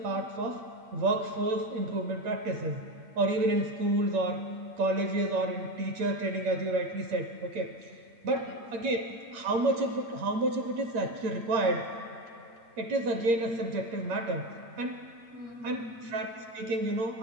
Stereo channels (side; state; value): left; late; 8.7 ms